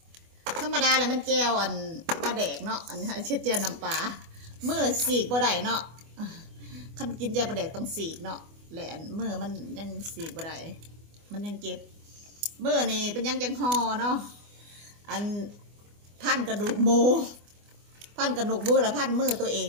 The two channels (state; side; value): late; left; 24 ms